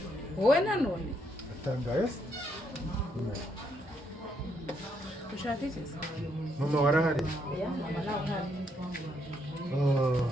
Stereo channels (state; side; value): normal; both; correlation 0.75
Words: wowe nanone Atangaye? ushaka iki? Mama warahari? Ya, mama nawe uhari.